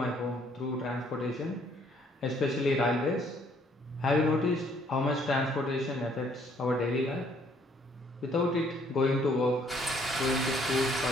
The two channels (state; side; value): normal; both; correlation 0.64